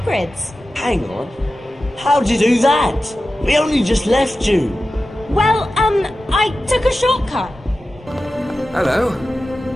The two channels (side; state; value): both; normal; correlation 0.93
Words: Hang on. How'd you do that? We only just left you. Well, I took a shortcut. Hello.